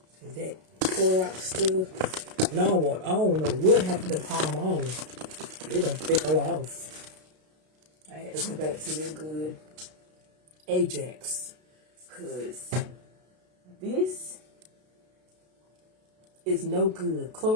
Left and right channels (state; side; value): late; left; 32 ms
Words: Is that Clorox stuff? No, I don't know what happened to Palm on. It done fell off. I had to go back to the good Ajax, cause this is no good.